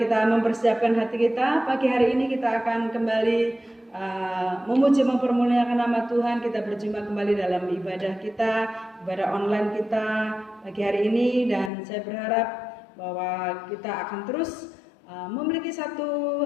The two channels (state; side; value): drops out; right; at 11.7 s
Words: mempersiapkan hati kita. Pagi hari ini kita akan kembali memuji mempermuliakan nama Tuhan. Kita berjumpa kembali dalam ibadah kita, ibadah online kita pagi hari ini, dan saya berharap bahwa kita akan terus memiliki satu